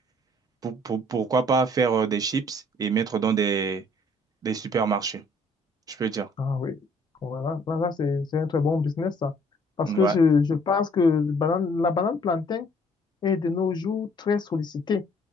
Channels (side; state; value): both; normal; correlation 0.60